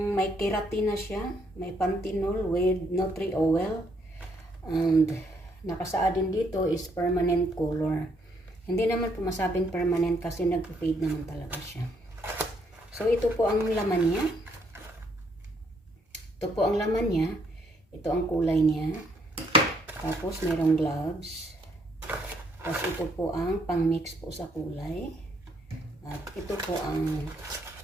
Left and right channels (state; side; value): normal; both; correlation 0.71